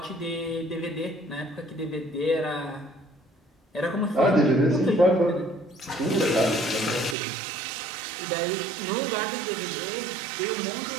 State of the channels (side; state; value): left; drops out; at 7.2 s